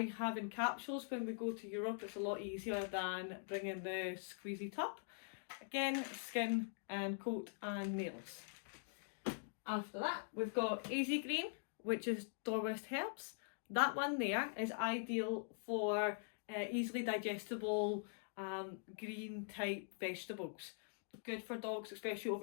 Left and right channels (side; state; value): right; silent; digital silence